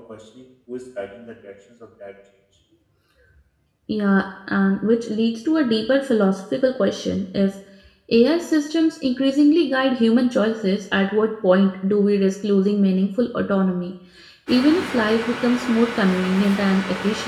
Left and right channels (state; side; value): identical; both; correlation 1.00